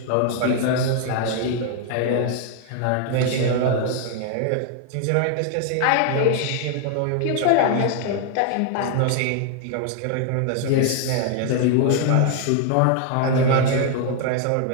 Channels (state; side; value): different; both; correlation 0.00